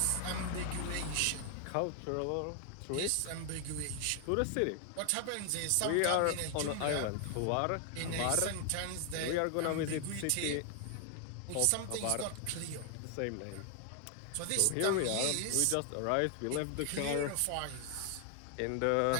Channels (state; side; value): different; both; correlation 0.00